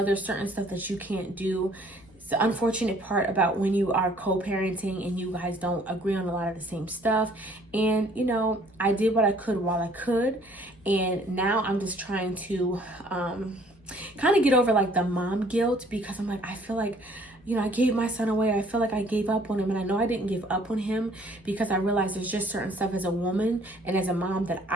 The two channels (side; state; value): left; noise; hum, 29 dB below the sound